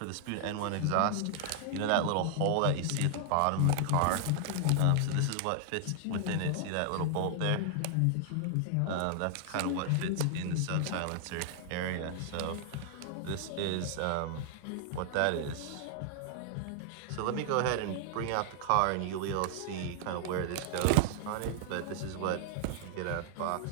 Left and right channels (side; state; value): both; different; correlation -0.01